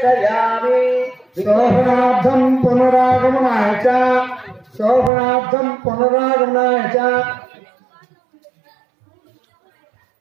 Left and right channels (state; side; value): drops out; left; at 5.1 s